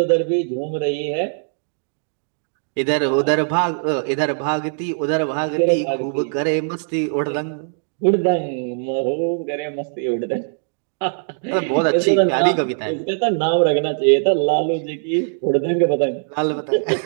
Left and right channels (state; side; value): silent; left; digital silence